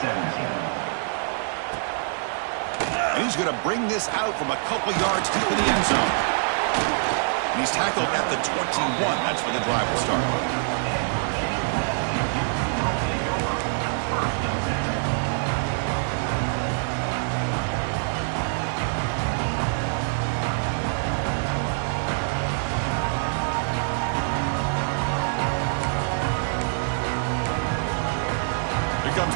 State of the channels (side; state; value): left; silent; 62 dB below the other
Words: 17. And he's going to bring this out from a couple yards deep in the end zone. And he's tackled at the 21. That's where the drive will start. Here comes